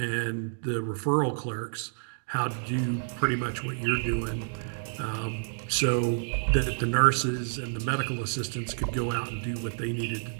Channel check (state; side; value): silent; left; digital silence